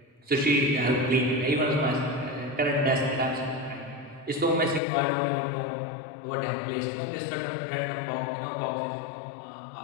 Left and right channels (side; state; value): right; drops out; at 4.8 s